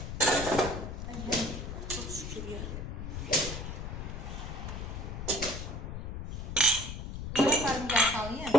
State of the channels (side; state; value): left; noise; rumble, 6 dB below the sound